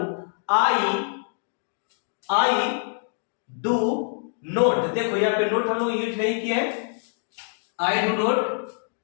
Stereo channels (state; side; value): silent; right; digital silence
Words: आई डू नोट। देखो यहाँ पे नोट हम लोग यूज नहीं किए हैं, I do not,